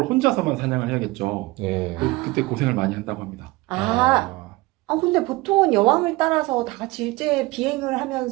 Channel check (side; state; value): left; quieter; 21.6 dB